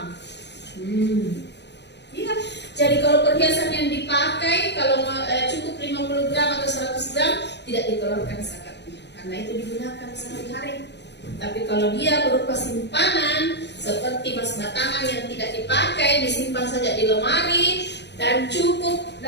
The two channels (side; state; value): right; late; 0.50 ms